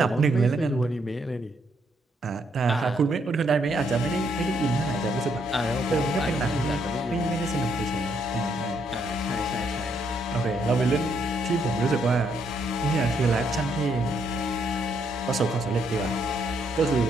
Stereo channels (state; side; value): normal; both; correlation 0.73